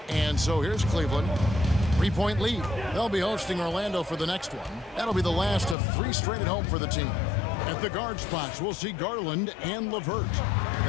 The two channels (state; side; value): drops out; right; at 5.8 s